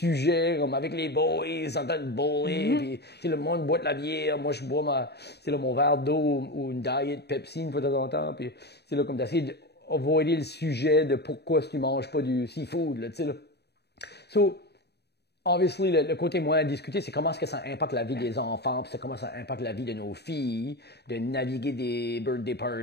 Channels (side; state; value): right; late; 0.48 ms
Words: comme avec les boys, en train de bowler, puis le monde boit de la bière, moi je bois mon verre d'eau ou une diet Pepsi une fois de temps en temps, puis c'est là comme d'essayer d'avoider le sujet de pourquoi tu manges pas du seafood, là, tu sais là. So, obviously, le côté moins à discuter, c'est comment est-ce que ça impacte la vie des enfants, puis c'est comment ça impacte la vie de nos filles, de naviguer des birthday